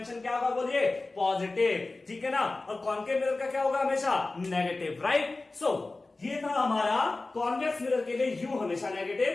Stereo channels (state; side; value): quieter; right; 3.3 dB